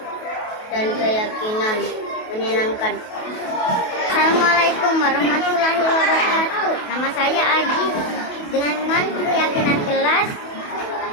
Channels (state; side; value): late; right; 28 ms